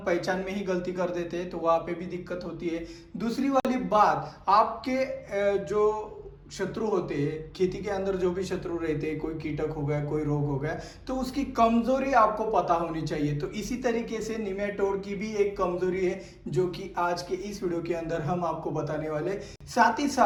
पहचान में ही गलती कर देते हैं तो वहां पे भी दिक्कत होती है। दूसरी वाली बात, आपके जो शत्रु होते हैं खेती के अंदर, जो भी शत्रु रहते हैं, कोई कीटक हो गया, कोई रोग हो गया, तो उसकी कमजोरी आपको पता होनी चाहिए। तो इसी तरीके से निमेटोड की भी एक कमजोरी है जो कि आज के इस वीडियो के अंदर हम आपको बताने वाले। साथ ही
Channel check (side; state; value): both; identical; correlation 1.00